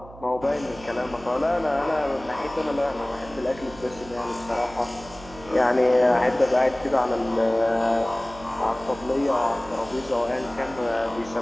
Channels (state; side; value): noise; right; hum, 18 dB below the sound